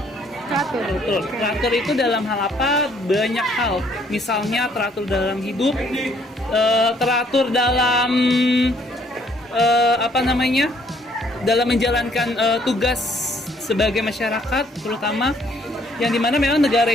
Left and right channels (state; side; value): normal; both; correlation 0.64